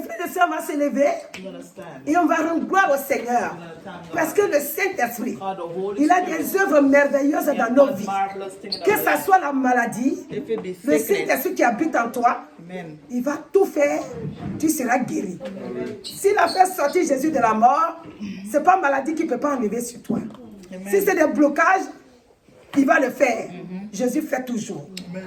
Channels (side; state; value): both; identical; correlation 1.00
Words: frères et sœurs, on va se lever et on va rendre gloire au Seigneur. Parce que le Saint-Esprit, il a des œuvres merveilleuses dans nos vies. Que ce soit la maladie, le Saint-Esprit qui habite en toi, il va tout faire, tu seras guéri. S'il a fait sortir Jésus de la mort, ce n'est pas la maladie qui ne peut pas enlever sur toi. Si c'est des blocages, il va le faire. Jésus fait toujours.